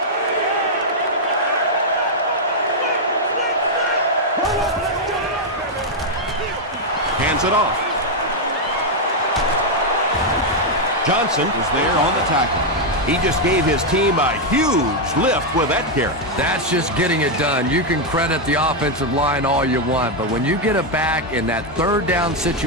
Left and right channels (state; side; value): normal; both; correlation 0.00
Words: Hands it off. Johnson Is there on the tackle. He just gave his team a huge lift with that carry. That's just getting it done. You can credit the offensive line all you want, but when you get it back in that 3rd down